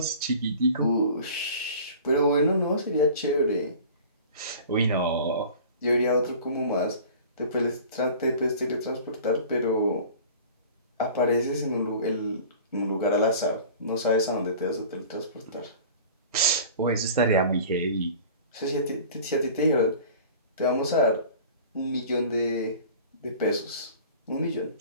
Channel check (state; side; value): inverted; both; correlation -0.42